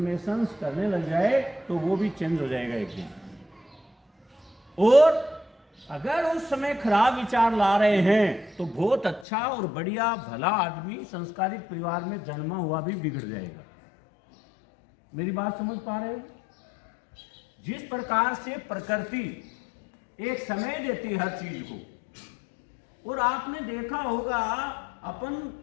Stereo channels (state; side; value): drops out; right; at 9.2 s